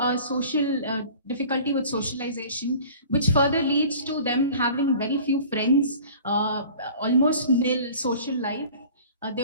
social difficulty with socialization, which further leads to them having very few friends, almost nil social life. They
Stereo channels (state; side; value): inverted; both; correlation -0.45